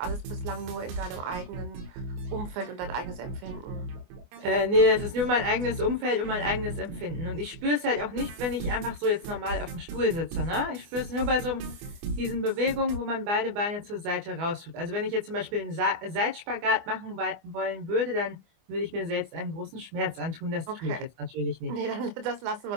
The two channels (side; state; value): left; late; 24 ms